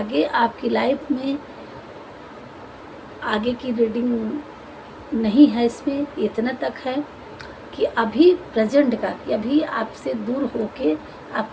आपकी लाइफ में आगे की रीडिंग नहीं है। इसमें इतना तक है कि अभी प्रेजेंट का, कि अभी आपसे दूर होके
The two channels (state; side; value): identical; both; correlation 1.00